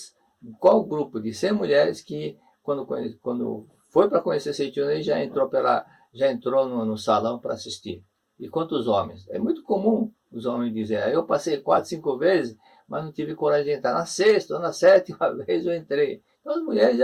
qual grupo de 100 mulheres que, quando foi para conhecer Seichoné, já entrou no salão para assistir. E quantos homens? É muito comum os homens dizerem, eu passei 4, 5 vezes, mas não tive coragem de entrar. Na 6ª ou na 7ª vez eu entrei. Então as mulheres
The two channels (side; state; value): both; identical; correlation 1.00